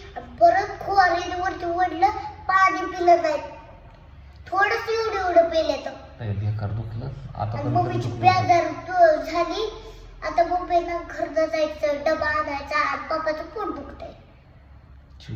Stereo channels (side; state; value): both; identical; correlation 1.00